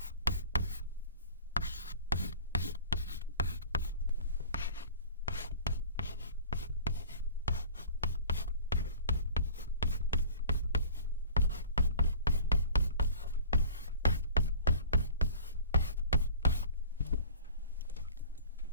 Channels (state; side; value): inverted; both; correlation -0.44